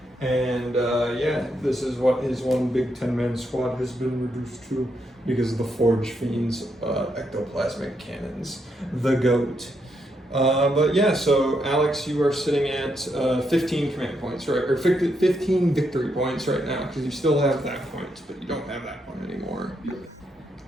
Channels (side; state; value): both; normal; correlation 0.79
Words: And yeah, this is what his one big 10-man squad has been reduced to because of the Forge Fiend's ectoplasmic cannons. The GOAT. But yeah, so Alex, you are sitting at 15 command points, right? Or 15 victory points right now, because you still have that point, but you don't have that one anymore.